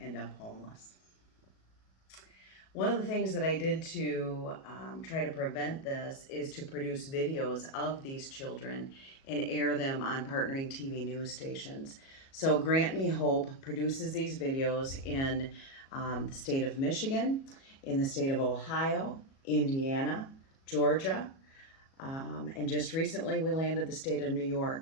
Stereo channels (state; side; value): late; right; 37 ms